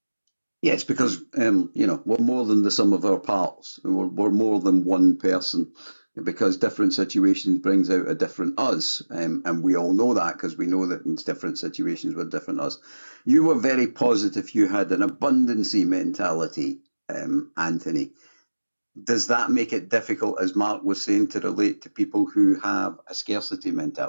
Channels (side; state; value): both; inverted; correlation -1.00